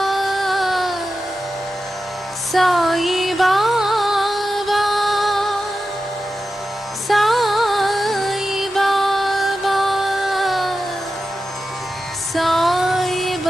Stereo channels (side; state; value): both; normal; correlation 0.92